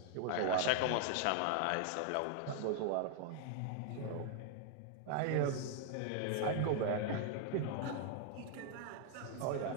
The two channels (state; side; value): different; both; correlation 0.00